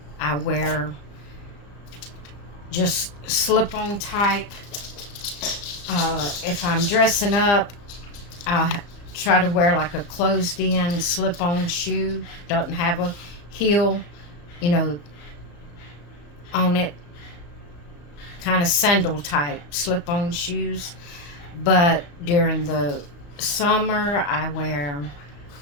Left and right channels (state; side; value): late; right; 35 ms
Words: wear just slip-on type. If I'm dressing up, I'll try to wear like a closed-in slip-on shoe. Doesn't have a heel, on it. Kind of sandal type slip-on shoes. But during the summer, I wear